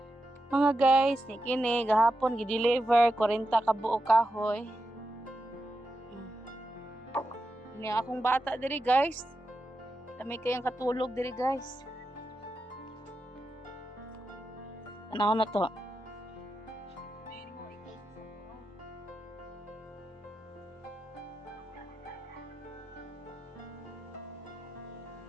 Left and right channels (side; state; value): both; normal; correlation 0.88